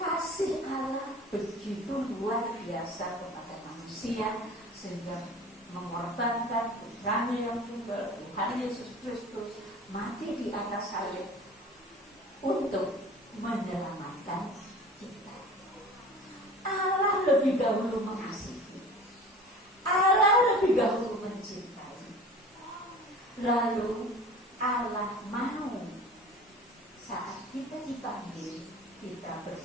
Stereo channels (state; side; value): normal; both; correlation 0.41